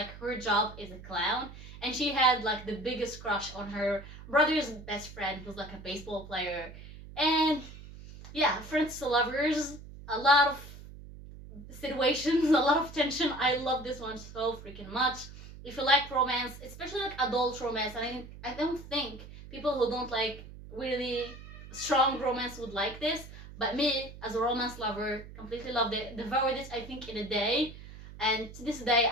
her job is a clown, and she had like the biggest crush on her brother's best friend, who's like a baseball player, and yeah, friends to lovers, a lot of situations, a lot of tension. I love this one so freaking much. If you like romance, especially like adult romance, and I don't think people who don't like really strong romance would like this, but me, as a romance lover, completely loved it. Devoured it, I think, in a day. And to this day,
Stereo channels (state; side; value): noise; right; hum, 15 dB below the sound